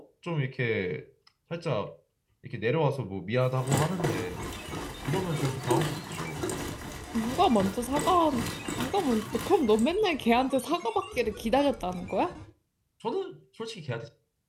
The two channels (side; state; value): both; identical; correlation 1.00